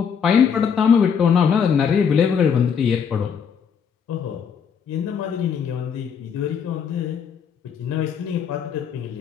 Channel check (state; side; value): quieter; right; 7.1 dB